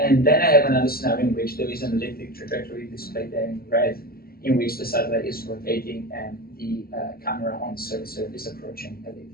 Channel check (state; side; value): late; right; 0.44 ms